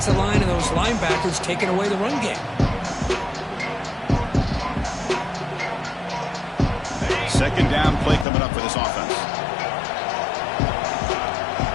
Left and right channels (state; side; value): drops out; right; at 8.2 s